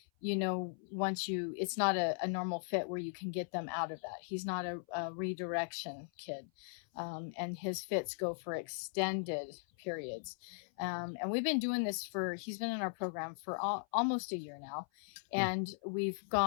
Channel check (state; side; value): silent; right; 52 dB below the other